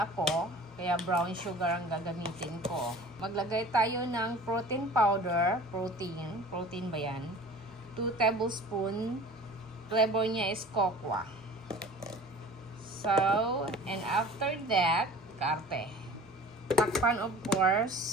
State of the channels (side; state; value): both; normal; correlation 0.43